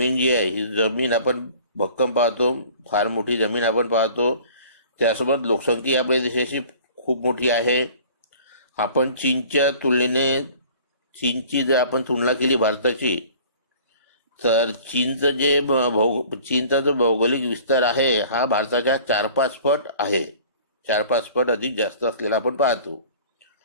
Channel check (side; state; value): both; inverted; correlation -0.48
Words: जी आहे, ही जमीन आपण भक्कम पाहतो, फार मोठी जमीन आपण पाहतो. त्यासोबत लोकसंख्या आपल्या देशाची खूप मोठी आहे. आपण चीनची जर आपण तुलना केली भारताची, तर चीनचा जो भौगोलिक विस्तार आहे हा भारताच्या 4-5 पट आहे. 4-5 पट अधिक जास्त असलेला आपण पाहतो.